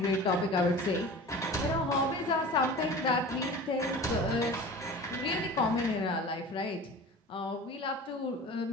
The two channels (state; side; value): normal; both; correlation 0.38